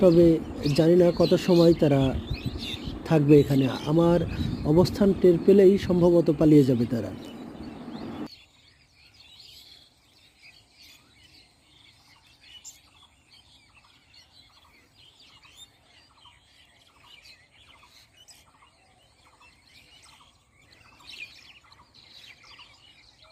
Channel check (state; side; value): identical; both; correlation 1.00